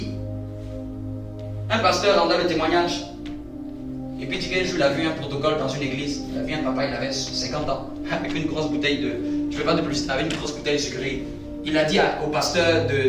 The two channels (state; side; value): identical; both; correlation 1.00